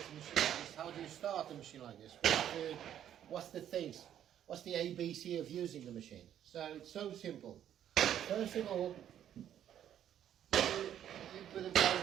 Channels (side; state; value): left; quieter; 10.4 dB